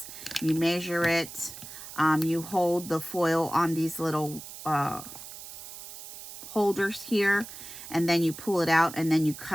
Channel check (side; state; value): right; noise; hiss, 13 dB below the sound